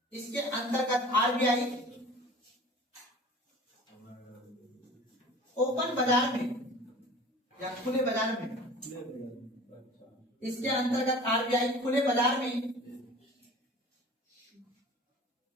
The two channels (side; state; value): both; normal; correlation 0.43